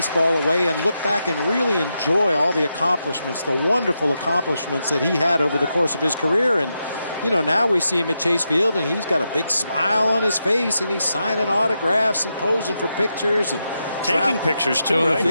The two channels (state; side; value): inverted; both; correlation -0.86